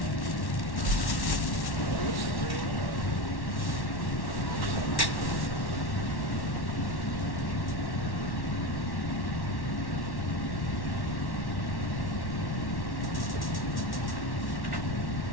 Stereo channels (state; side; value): late; right; 1.1 ms